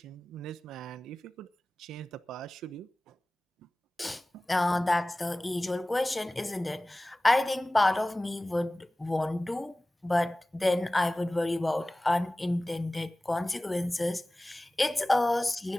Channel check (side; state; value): both; normal; correlation 0.98